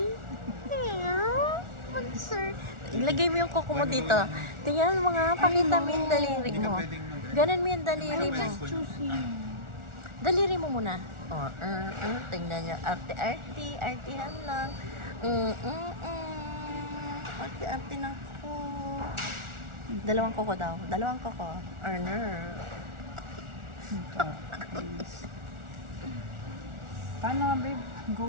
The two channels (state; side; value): late; left; 1.4 ms